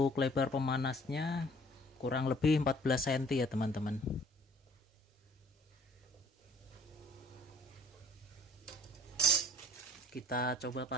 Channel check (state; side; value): normal; both; correlation 0.53